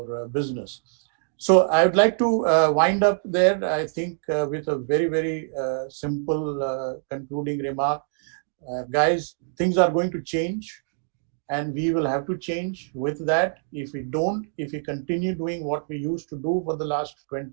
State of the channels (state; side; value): silent; left; digital silence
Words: business. So I would like to wind up there, I think, with a very, very simple concluding remark. Guys, things are going to change, and we will have to change with that. If we continue doing what we used to do for the last